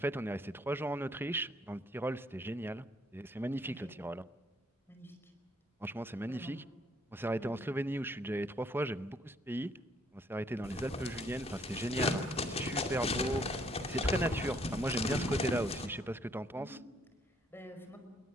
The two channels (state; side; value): normal; both; correlation 0.66